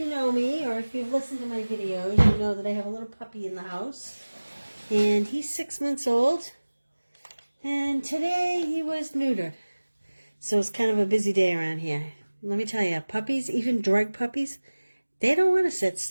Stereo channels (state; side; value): inverted; both; correlation -1.00